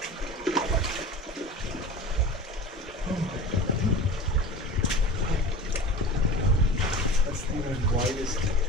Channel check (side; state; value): both; normal; correlation 0.35